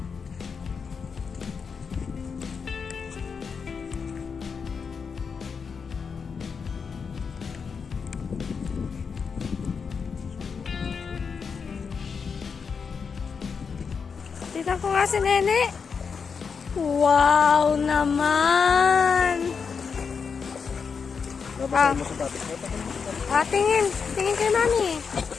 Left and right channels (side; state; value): right; quieter; 5.8 dB